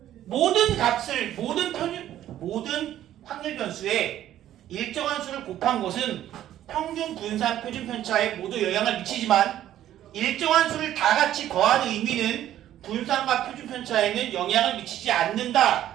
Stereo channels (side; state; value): left; quieter; 12.3 dB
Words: 모든 값을 모든 확률 변수에 일정한 수를 곱한 것은 평균 분산 표준 편차에 모두 영향을 미치지만 일정한 수를 다 같이 더하는 의미는 분산과 표준 편차에는 영향을 미치지 않는다